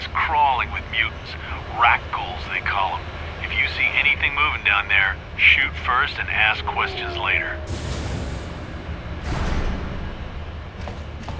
crawling with mutants. Rat ghouls, they call them. If you see anything moving down there, shoot first and ask questions later.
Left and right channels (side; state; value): both; identical; correlation 1.00